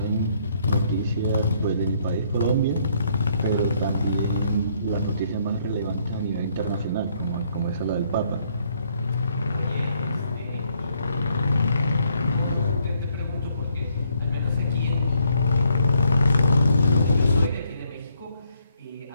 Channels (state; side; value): inverted; both; correlation -0.70